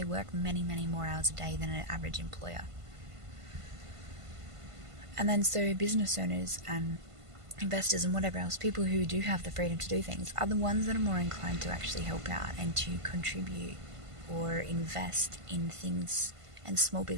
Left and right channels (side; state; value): left; late; 1.5 ms